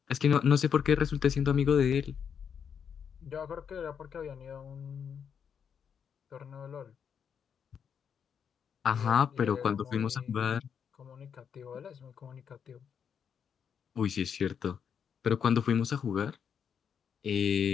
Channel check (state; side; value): quieter; right; 7.4 dB